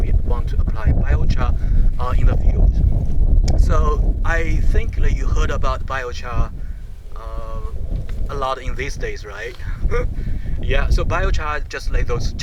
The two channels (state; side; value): identical; both; correlation 1.00